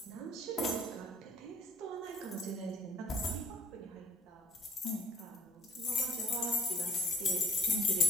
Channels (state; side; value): normal; both; correlation 0.59